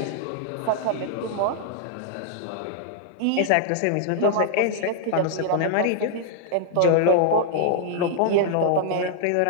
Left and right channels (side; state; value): both; different; correlation -0.01